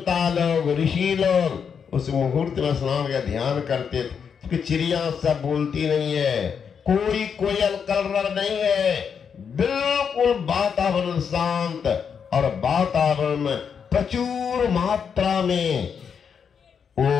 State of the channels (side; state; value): right; quieter; 6.9 dB